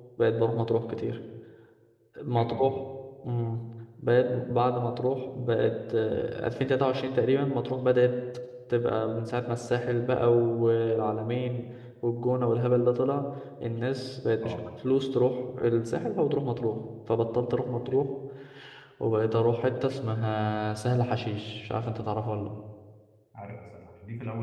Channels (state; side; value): identical; both; correlation 1.00